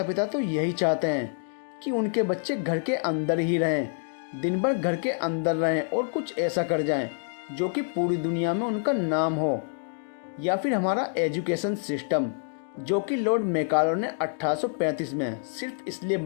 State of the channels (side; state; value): right; silent; digital silence